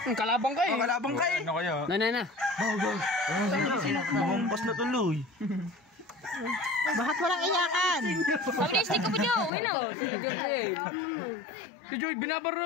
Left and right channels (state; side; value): drops out; right; at 9.5 s